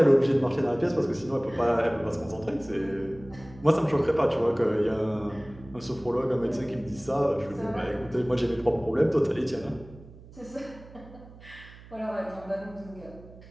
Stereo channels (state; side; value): noise; right; hum, 20 dB below the sound